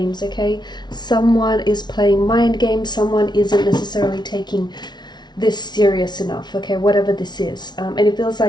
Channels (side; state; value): right; late; 0.20 ms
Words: okay? Someone is playing mind games, someone isn't necessarily taking this serious enough, okay? Whatever this is. And it feels